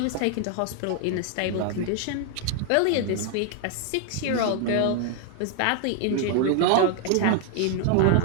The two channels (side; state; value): both; different; correlation 0.00